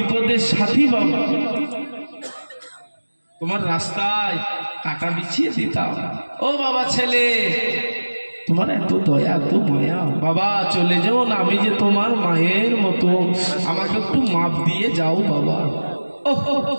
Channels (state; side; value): inverted; both; correlation -1.00